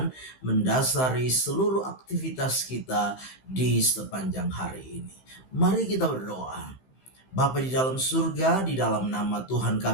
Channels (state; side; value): late; right; 15 ms